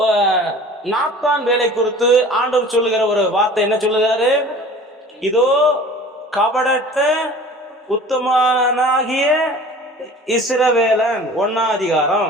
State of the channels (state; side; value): normal; both; correlation 0.44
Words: நாத்தான் வேலை குறித்து ஆண்டவர் சொல்லுகிற ஒரு வார்த்தை என்ன சொல்லுகிறாரு? இதோ கபடற்ற உத்தமனாகிய இஸ்ரவேலன். 1ஆம்